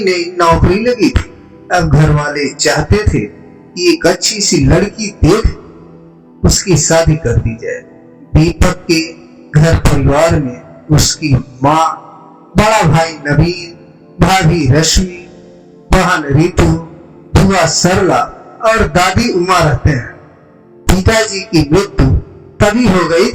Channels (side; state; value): both; identical; correlation 1.00